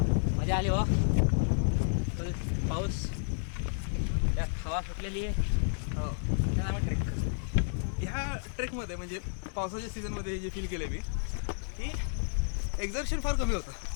मजा आली वा. पाऊस त्यात हवा सुटलेली आहे. हो, त्याला आम्ही ट्रेक ह्या ट्रेकमध्ये म्हणजे पावसाच्या सीझनमध्ये हे जे फील केलं मी की एक्झर्शन फार कमी होतं.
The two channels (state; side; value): silent; right; digital silence